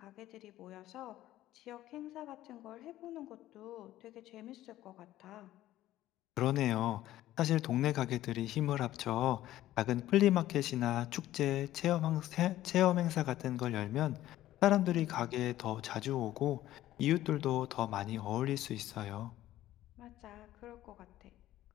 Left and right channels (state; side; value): quieter; right; 14.0 dB